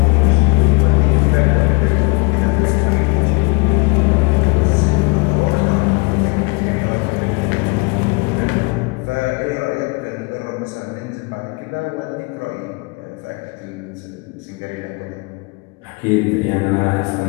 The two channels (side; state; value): right; quieter; 29.4 dB